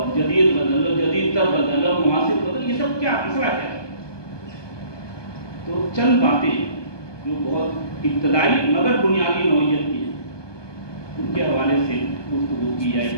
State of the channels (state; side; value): late; right; 1.2 ms